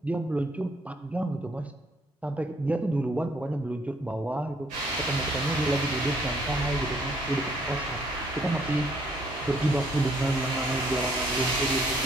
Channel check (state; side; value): normal; both; correlation 0.66